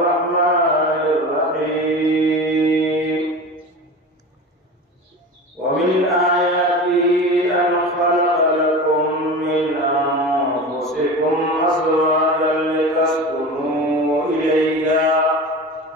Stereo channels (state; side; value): normal; both; correlation 0.31